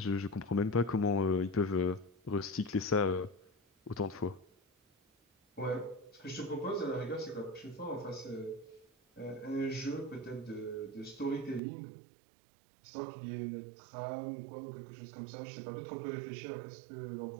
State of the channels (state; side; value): drops out; left; at 11.6 s